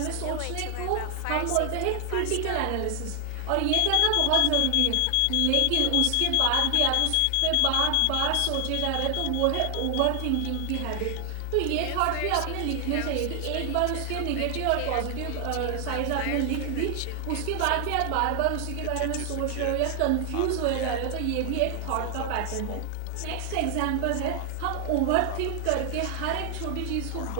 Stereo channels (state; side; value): different; both; correlation 0.00